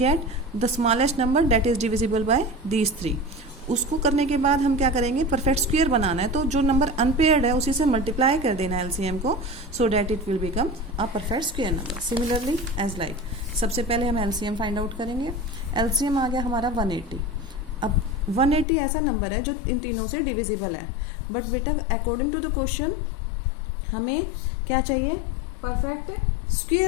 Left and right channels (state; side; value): drops out; right; at 18.7 s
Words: the smallest number that is divisible by these 3। उसको करने के बाद हम क्या करेंगे, परफेक्ट स्क्वायर बनाना है, तो जो नंबर अनपेयर्ड है उसी से मल्टीप्लाई कर देना है एलसीएम को, so that it will become a perfect square number. Similarly as like, सबसे पहले हम एलसीएम फाइंड आउट करेंगे। एलसीएम आ गया हमारा 180। अब 180 ऐसा नंबर है जो इन तीनों से डिविजिबल है, बट बेटा अकॉर्डिंग टू द क्वेश्चन हमें क्या चाहिए, परफेक्ट